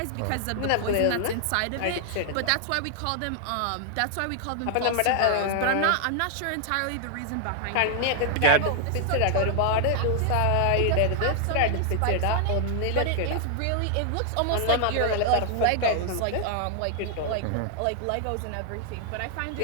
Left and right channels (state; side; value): different; both; correlation -0.01